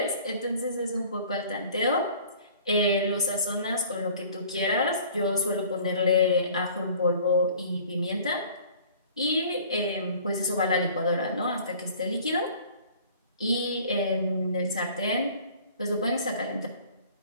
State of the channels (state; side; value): inverted; both; correlation -0.50